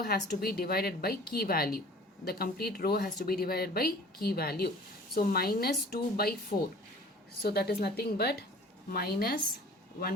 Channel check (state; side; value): normal; both; correlation 0.47